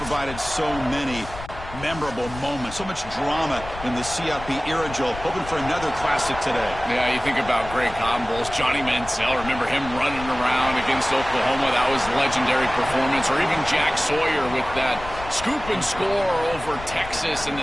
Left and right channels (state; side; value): noise; left; rumble, 13 dB below the sound